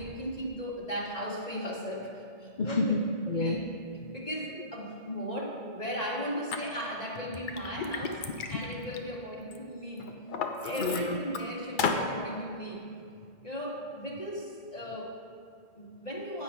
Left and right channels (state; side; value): late; right; 2.3 ms